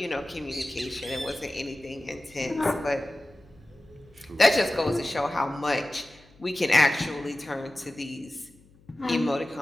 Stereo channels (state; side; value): noise; left; hum, 28 dB below the sound